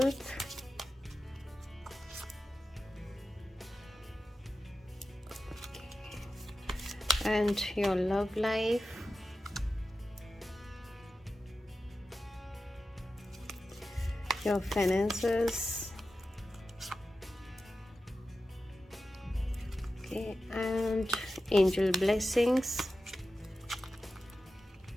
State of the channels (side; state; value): both; normal; correlation 0.92